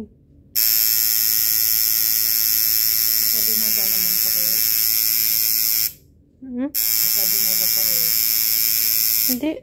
eh. Sabi na ba naman pa kayo? Sabi na ba pa kayo? Hindi.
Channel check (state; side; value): identical; both; correlation 1.00